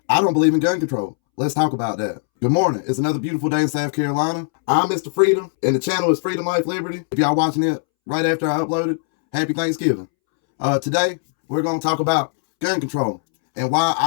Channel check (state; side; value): silent; right; 66 dB below the other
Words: I don't believe in gun control. Let's talk about that. Good morning. It's another beautiful day in South Carolina. I'm Mr. Freedom, and the channel is Freedom, Life, Liberty. If y'all watching it right after I uploaded, happy Thanksgiving. Today, we're going to talk about gun control and why